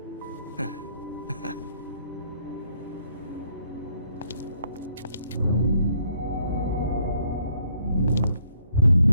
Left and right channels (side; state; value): both; inverted; correlation -0.69